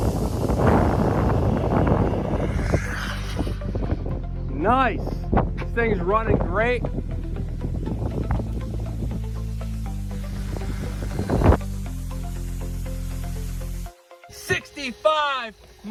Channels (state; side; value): identical; both; correlation 1.00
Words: Nice. This thing's running great. "65